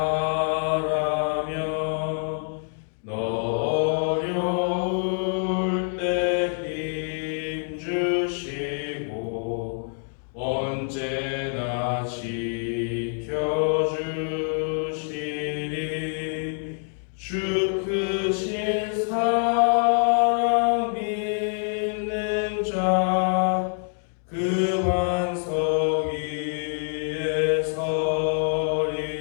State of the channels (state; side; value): silent; right; 61 dB below the other